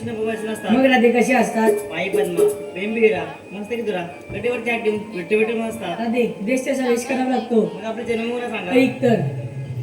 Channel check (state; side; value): identical; both; correlation 1.00